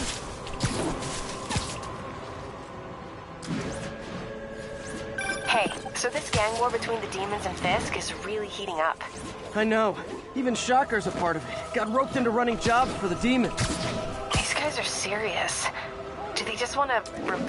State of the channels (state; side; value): identical; both; correlation 1.00